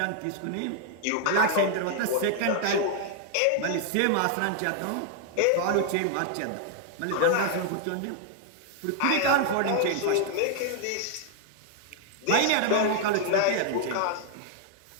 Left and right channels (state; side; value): different; both; correlation 0.00